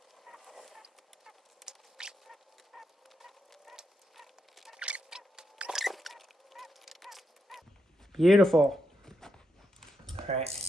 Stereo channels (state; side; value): normal; both; correlation 0.82